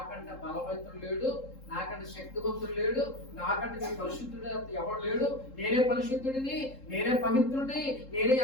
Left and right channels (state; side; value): late; right; 3.7 ms